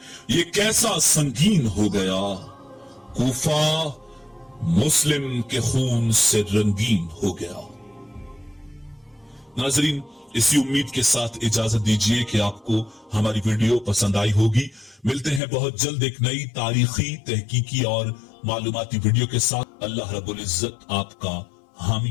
ये कैसा संगीन हो गया, कूफा मुस्लिम के खून से रंगीन हो गया। नाजरीन, इसी उम्मीद के साथ इजाजत दीजिए कि आपको हमारी वीडियो पसंद आई होगी। मिलते हैं बहुत जल्द एक नई तारीखी, तहकीकी और मालूमाती वीडियो के साथ। अल्लाह रब्बुल इज्जत आपका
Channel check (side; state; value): right; drops out; at 15.4 s